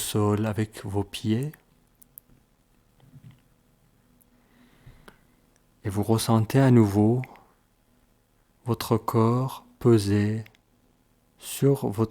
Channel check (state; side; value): identical; both; correlation 1.00